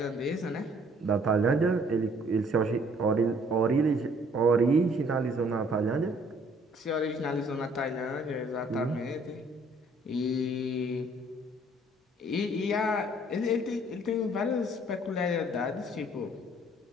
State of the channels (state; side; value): normal; both; correlation 0.60